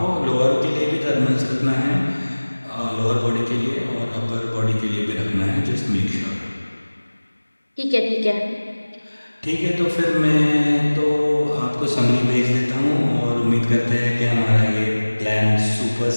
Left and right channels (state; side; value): inverted; both; correlation -1.00